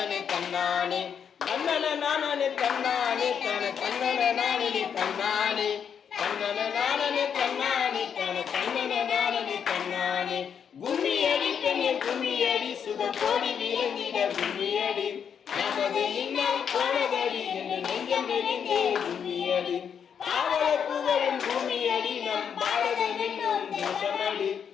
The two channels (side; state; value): right; quieter; 7.6 dB